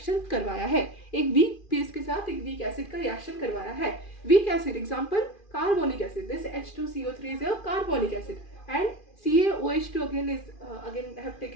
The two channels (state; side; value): late; right; 2.4 ms